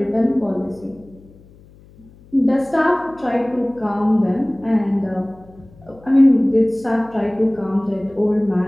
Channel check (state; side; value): noise; left; hum, 25 dB below the sound